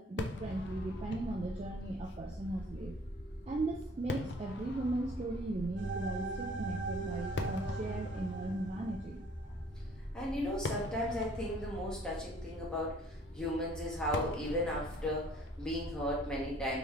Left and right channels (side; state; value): both; normal; correlation 0.56